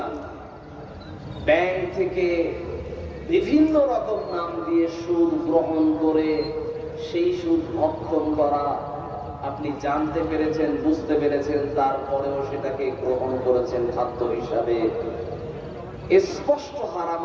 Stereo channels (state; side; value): identical; both; correlation 1.00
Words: ব্যাংক থেকে বিভিন্ন রকম নাম দিয়ে সুদ গ্রহণ করে সেই সুদ ভক্ষণ করা, আপনি জানতে পেরেছেন, বুঝতে পেরেছেন, তারপরেও সেটাকে গ্রহণ করেছেন খাদ্য হিসাবে, স্পষ্ট হারাম।